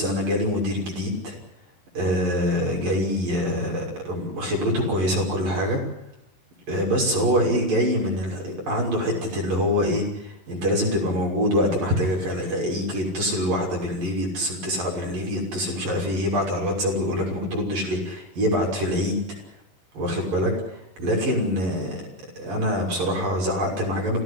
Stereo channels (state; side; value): late; left; 11 ms